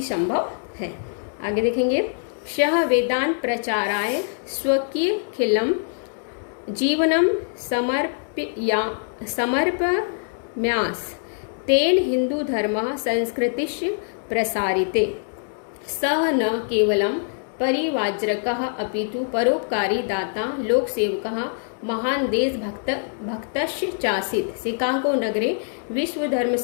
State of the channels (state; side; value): silent; right; digital silence